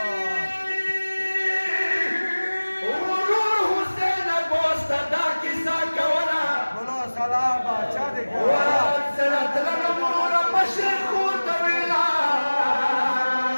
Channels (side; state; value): both; inverted; correlation -1.00